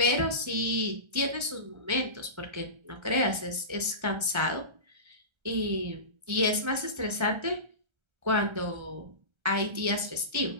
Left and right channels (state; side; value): late; left; 1.3 ms